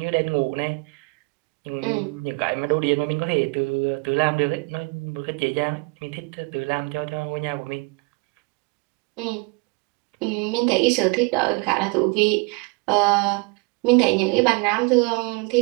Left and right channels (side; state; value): left; quieter; 29.2 dB